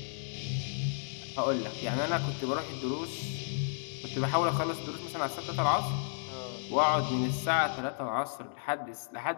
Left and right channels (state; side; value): silent; right; digital silence